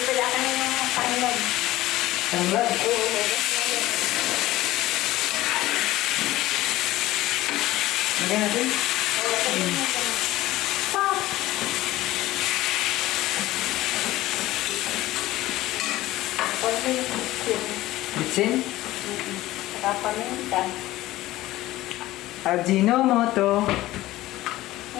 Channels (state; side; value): quieter; right; 16.5 dB